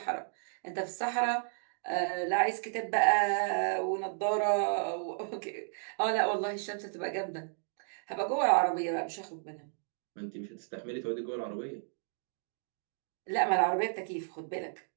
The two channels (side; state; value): left; silent; digital silence